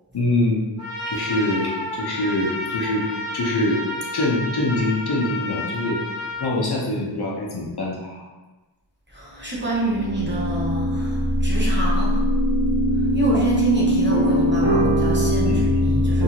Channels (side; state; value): both; normal; correlation 0.34